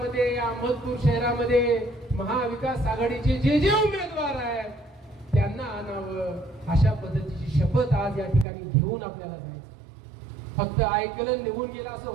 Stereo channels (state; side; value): drops out; left; at 8.5 s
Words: या अहमदपूर शहरामध्ये महाविकास आघाडीचे जे उमेदवार आहेत त्यांना आणावं, अशा पद्धतीची शपथ आज या ठिकाणी घेऊन आपल्याला जायचं. फक्त ऐकलं निघून गेलं असं